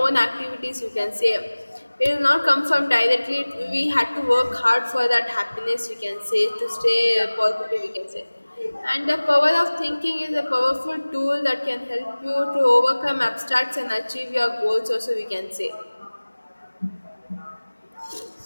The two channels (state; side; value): inverted; both; correlation -1.00